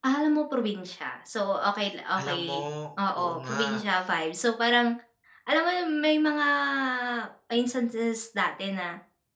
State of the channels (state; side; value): identical; both; correlation 1.00